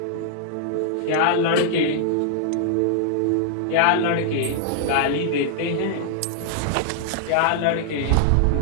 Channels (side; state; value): both; different; correlation -0.01